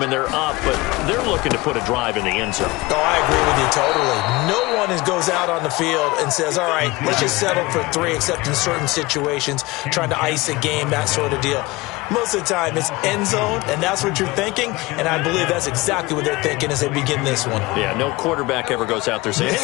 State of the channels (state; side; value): quieter; right; 21.8 dB